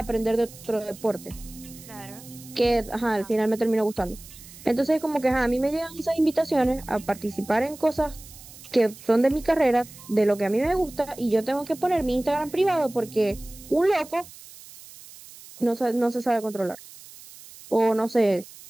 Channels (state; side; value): noise; right; hiss, 19 dB below the sound